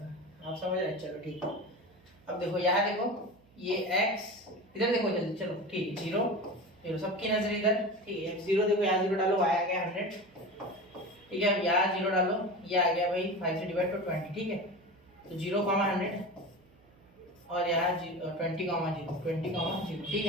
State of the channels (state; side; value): noise; right; hum, 29 dB below the sound